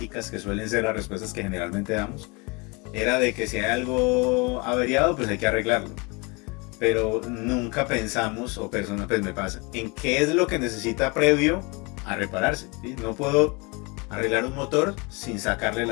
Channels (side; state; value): right; quieter; 28.6 dB